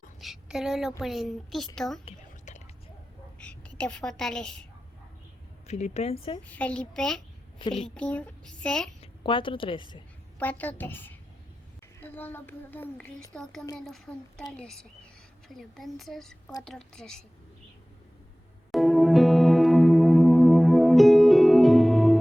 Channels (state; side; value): normal; both; correlation 0.98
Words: Solo lo puedo en Cristo que te fortalece. Filipenses Filipenses 4:13. 4:13. Todo lo puedo en Cristo que me lo fortalece. Filipenses 4:13.